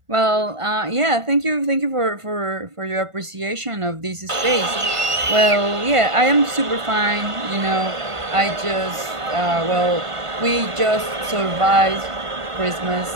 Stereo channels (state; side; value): late; left; 1.5 ms